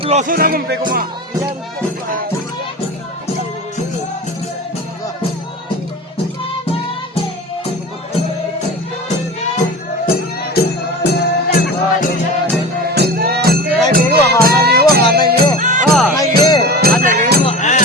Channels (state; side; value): normal; both; correlation 0.32